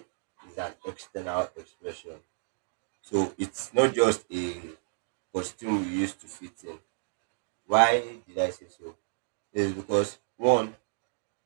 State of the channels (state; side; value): silent; left; digital silence